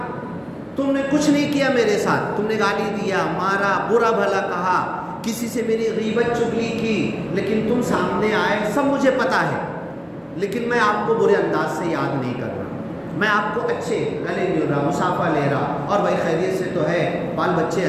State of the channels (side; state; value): both; identical; correlation 1.00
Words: تم نے کچھ نہیں کیا میرے ساتھ، تم نے گالی دیا، مارا، برا بھلا کہا، کسی سے میری غیبت چغلی کی، لیکن تم سامنے آئے، سب مجھے پتا ہے، لیکن میں آپ کو برے انداز سے یاد نہیں کر رہا، میں آپ کو اچھے گلے مل رہا، مصافحہ لے رہا، اور بھائی خیریت سے تو ہے، بال بچے